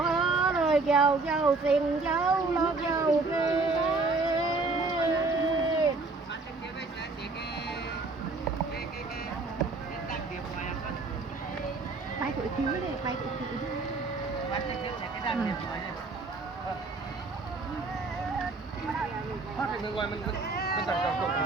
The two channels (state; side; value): quieter; left; 3.7 dB